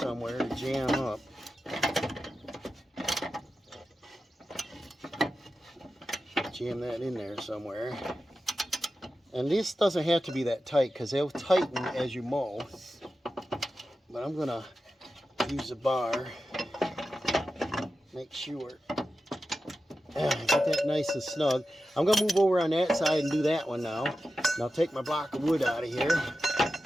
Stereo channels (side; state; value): both; normal; correlation 0.92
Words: to jam up. Jam that in there somewhere. And this doesn't have to be that tight, because they'll tighten as you mow. But I'm gonna use a bar. Make sure. Get that nice and snug. I'm gonna move over on that side and do that one now. And I'll take my block of wood out of here.